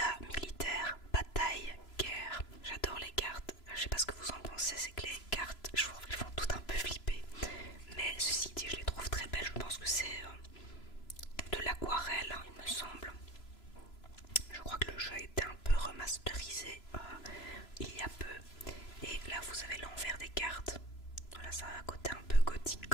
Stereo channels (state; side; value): late; right; 3.0 ms